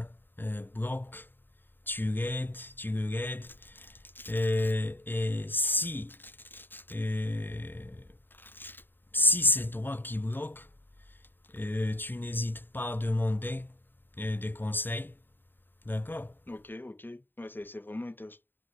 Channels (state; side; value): late; right; 0.095 ms